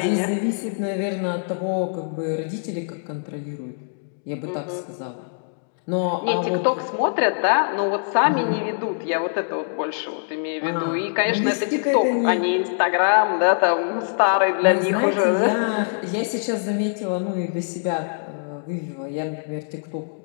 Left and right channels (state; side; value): silent; right; digital silence